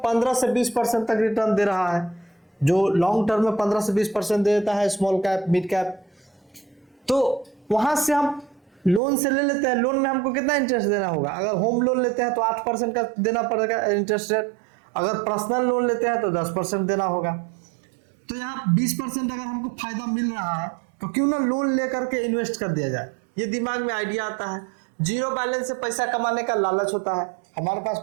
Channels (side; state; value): left; drops out; at 9.0 s